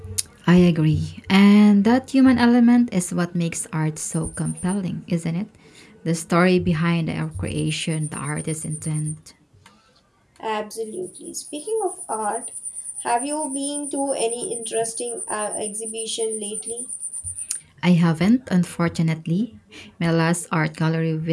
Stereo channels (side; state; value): both; identical; correlation 1.00